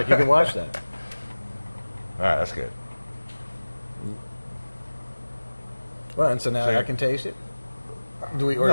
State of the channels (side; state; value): both; inverted; correlation -1.00